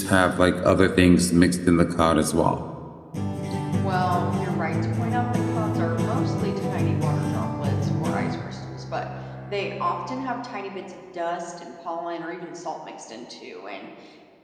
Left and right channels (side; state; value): both; identical; correlation 1.00